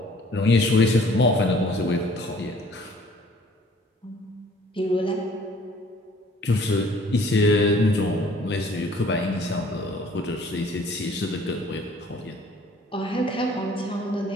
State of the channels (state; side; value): normal; both; correlation 0.55